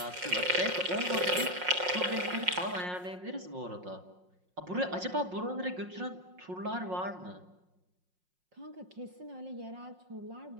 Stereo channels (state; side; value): late; left; 5.5 ms